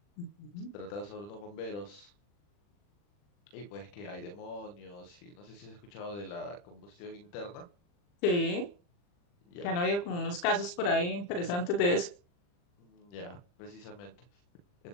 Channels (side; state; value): right; late; 40 ms